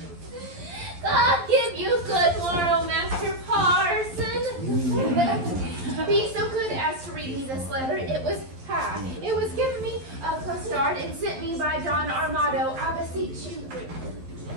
God give you good morrow, Master Parson. Be so good as to read me this letter. It was given me of Costard and sent me by Don Armado. I beseech you.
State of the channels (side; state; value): left; late; 12 ms